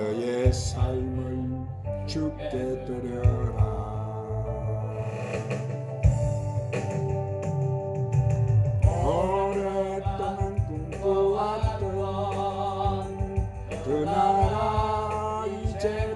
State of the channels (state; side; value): identical; both; correlation 1.00